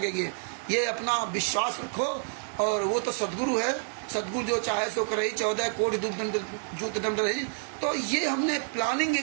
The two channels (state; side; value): silent; left; 59 dB below the other